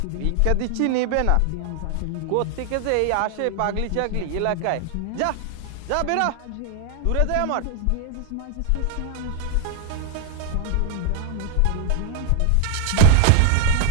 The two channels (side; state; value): both; different; correlation 0.00